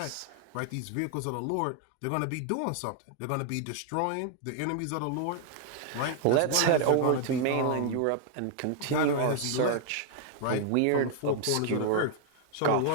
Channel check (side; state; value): both; different; correlation 0.00